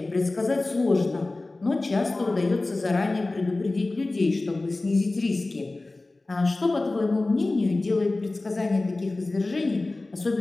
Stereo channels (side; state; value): right; quieter; 3.1 dB